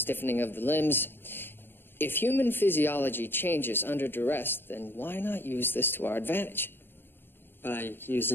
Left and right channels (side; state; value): right; late; 0.099 ms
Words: of the limbs. If human physiology changes under duress, then why not use this to our advantage? By